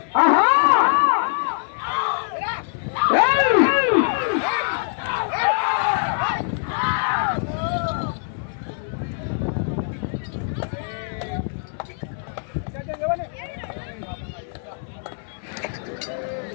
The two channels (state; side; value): silent; right; 63 dB below the other